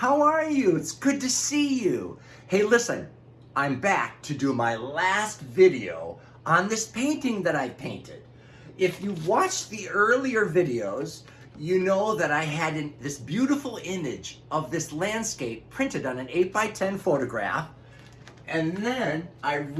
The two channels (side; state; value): both; identical; correlation 1.00